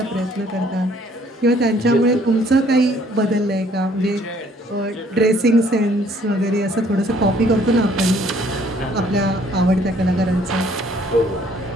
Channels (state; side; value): normal; both; correlation 0.61